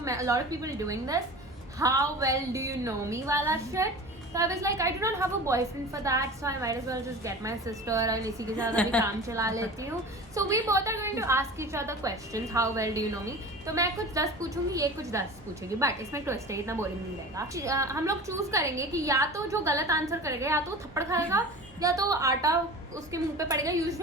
lot of people doing this. How well do you know me वाला shit. So I was like, I do not have a boyfriend for that, so I might as well just get my sister and इसी के साथ अभी काम चला लेती हूँ. So we both are going to ask each other questions. How well do you know me? तो मैं कुछ 10 पूछूंगी, ये कुछ 10 पूछेगी. बट इसमें ट्विस्ट है, इतना बोरिंग नहीं रहेगा. हम लोग चूज करेंगे कि या तो जो गलत आंसर करेगा या तो थप्पड़ खाएगा या तो आटा उसके मुंह पे पड़ेगा.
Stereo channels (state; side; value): normal; both; correlation 0.36